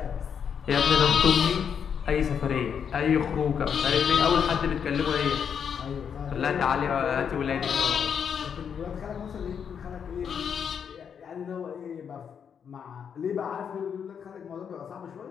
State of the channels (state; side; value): quieter; right; 7.4 dB